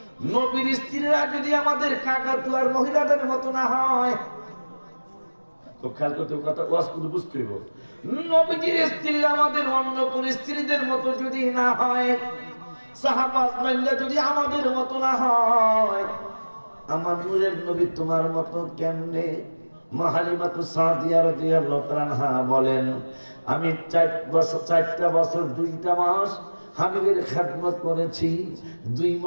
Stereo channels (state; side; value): inverted; both; correlation -1.00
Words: নবীর স্ত্রীরা যদি আমাদের কাকাতুয়ার মহিলাদের মতো না হয়, খুব খেয়াল করতে কথা ওয়াজ কিন্তু বুঝতে হইব। নবীজির স্ত্রী আমাদের অন্য কোন স্ত্রীদের মতো যদি না হয়, সাহাবাজরা যদি আমাদের মতো না হয়, আমার নূরের নবী তোমার মতো কেমনে? মা হালিমাতু সাদিয়া রাদিয়াল্লাহু তাআলা বলেন, আমি 4টা বছর 2টা মাস হাবিবের খেদমত করেছি। 2